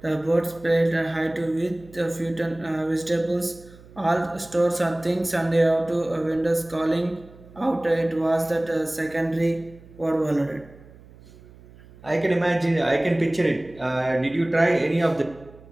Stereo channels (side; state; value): right; noise; hum, 22 dB below the sound